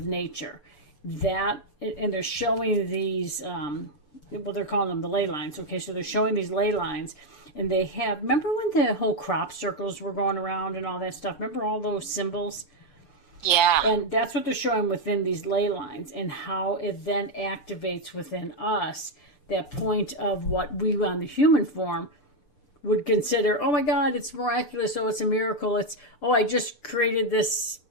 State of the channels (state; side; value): late; right; 6.8 ms